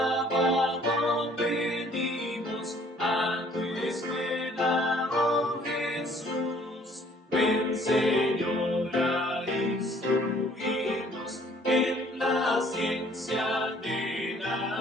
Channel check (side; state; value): both; normal; correlation 0.58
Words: venimos a tu escuela, oh Jesús. Ven, Señor, a instruirnos en la ciencia de